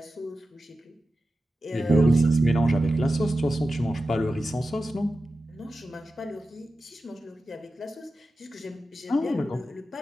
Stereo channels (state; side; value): normal; both; correlation 0.92